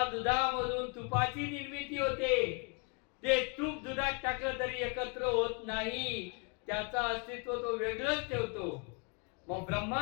दुधामधून तुपाची निर्मिती होते ते तूप दुधात टाकलं तरी एकत्र होत नाही, त्याचं अस्तित्व तो वेगळंच ठेवतो. मग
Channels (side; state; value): right; quieter; 35.4 dB